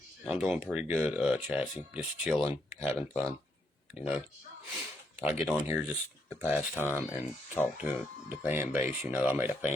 I'm doing pretty good, Chassis. Just chilling, having fun. You know, I get on here just to pass time and talk to the fan base. You know, I made a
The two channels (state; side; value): normal; both; correlation 0.76